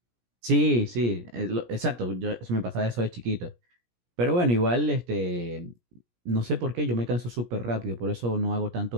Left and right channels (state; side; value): late; left; 17 ms